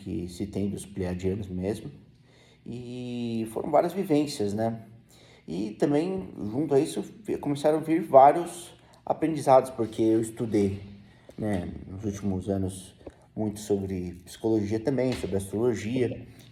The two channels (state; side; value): identical; both; correlation 1.00